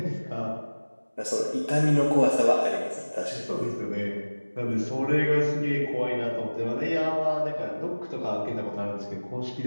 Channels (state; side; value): inverted; both; correlation -1.00